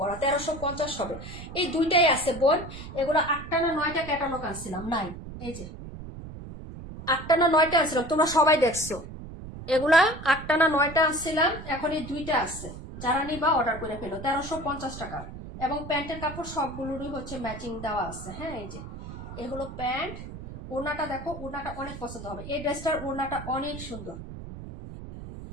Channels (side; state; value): right; noise; rumble, 11 dB below the sound